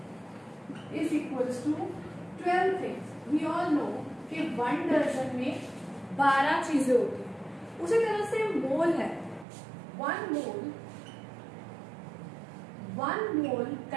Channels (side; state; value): left; drops out; at 9.5 s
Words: is equals to 12 things. We all know कि 1 डजन में 12 चीजें होती हैं. उसी तरह से मोल है. 1 mole